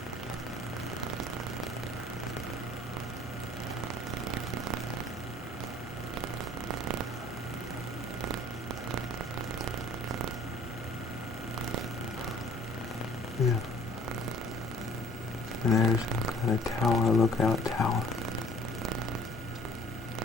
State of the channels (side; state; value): both; normal; correlation 0.54